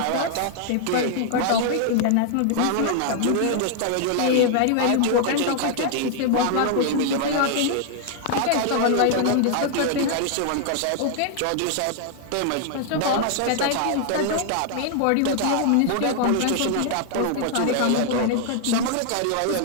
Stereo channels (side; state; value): both; different; correlation 0.00